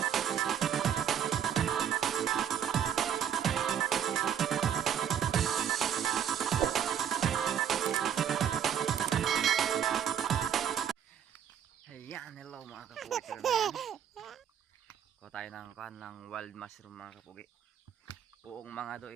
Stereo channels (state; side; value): quieter; left; 9.0 dB